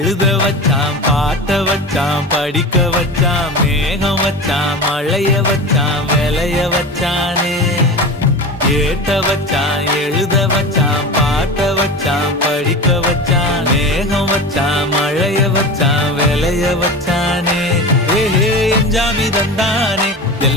வச்சான் பாட்ட வச்சான் படிக்க வச்சான் மேகம் வச்சான் மழைய வச்சான் விளைய வச்சானே ஏத்த வச்சான் எழுத வச்சான் பாட்ட வச்சான் படிக்க வச்சான் மேகம் வச்சான் மழைய வச்சான் விளைய வச்சானே ஏஹே எஞ்சாமி தந்தானே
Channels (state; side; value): normal; both; correlation 0.29